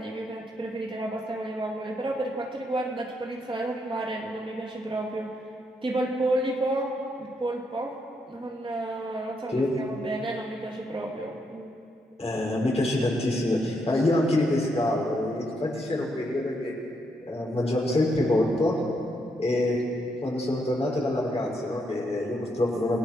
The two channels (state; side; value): normal; both; correlation 0.78